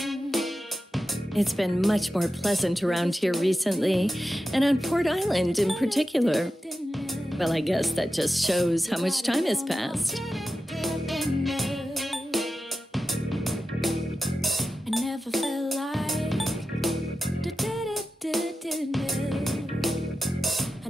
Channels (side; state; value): both; normal; correlation 0.92